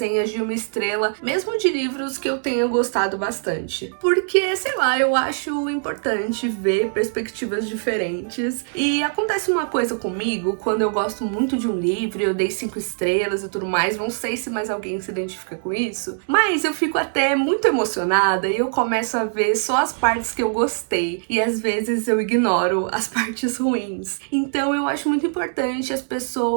de 1 estrela, mesmo de livros que eu tenha gostado bastante. Porque, sei lá, eu acho importante ver perspectivas diferentes. E acontece uma coisa comigo, quando eu gosto muito de um livro, eu dei 5 estrelas e tudo mais, não sei se mais alguém se identifica com isso, mas eu fico até muito emocionada e eu começo a ver só as partes que eu gostei, e às vezes eu ignoro as partes ruins. Então eu acho muito importante as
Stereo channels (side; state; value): left; silent; digital silence